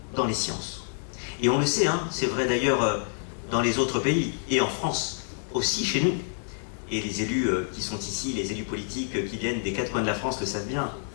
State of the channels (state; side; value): silent; right; digital silence